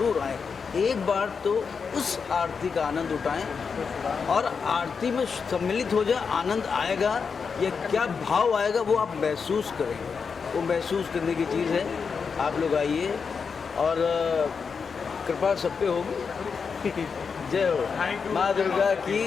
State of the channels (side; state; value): right; quieter; 5.7 dB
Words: आएँ, एक बार तो उस आरती का आनंद उठाएं और आरती में सम्मिलित हो जाए। आनंद आएगा या क्या भाव आएगा वो आप महसूस करेंगे, वो महसूस करने की चीज़ है। आप लोग आइए और कृपा सब पे होगी। जय हो माँ दुर्गा की